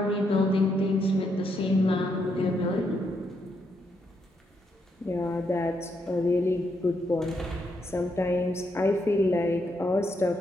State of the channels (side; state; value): both; normal; correlation 0.78